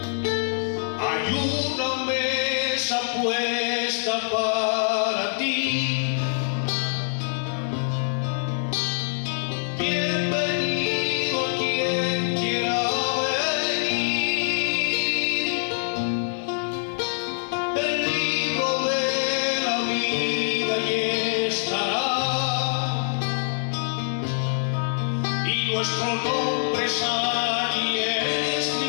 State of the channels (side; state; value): right; silent; digital silence